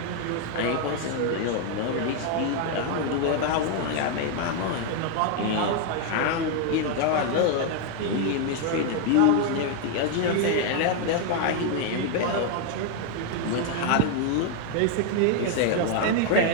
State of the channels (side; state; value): both; different; correlation 0.00